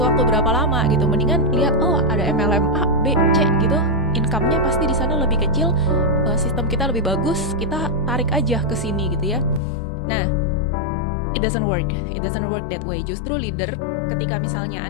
waktu berapa lama gitu. Mendingan lihat, oh ada MLM A, B, C gitu, income-nya pasti di sana lebih kecil, sistem kita lebih bagus, kita tarik aja ke sini gitu ya. Nah, it doesn't work that way. Justru leader, ketika misalnya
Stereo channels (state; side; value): drops out; right; at 9.6 s